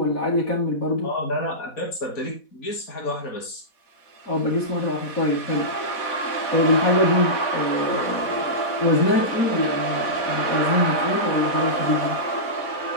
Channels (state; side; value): late; right; 4.1 ms